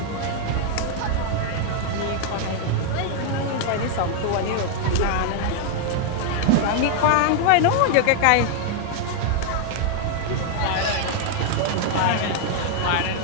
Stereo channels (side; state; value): both; different; correlation 0.00